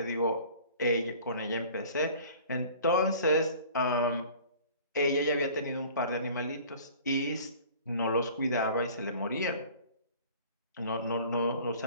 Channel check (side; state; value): both; inverted; correlation -0.47